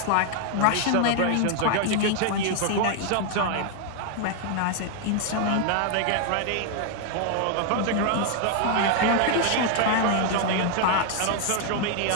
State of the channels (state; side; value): different; both; correlation 0.00